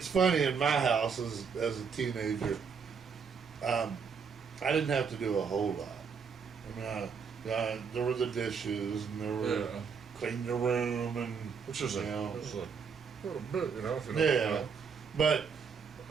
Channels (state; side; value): quieter; left; 6.0 dB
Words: funny, in my house as a teenager, I didn't have to do a whole lot. I mean, there were the dishes, and there were clean the room, and which is a little bit, if you know. Yeah, but